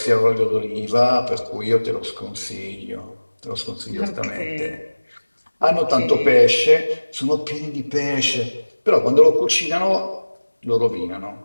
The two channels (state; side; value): inverted; both; correlation -1.00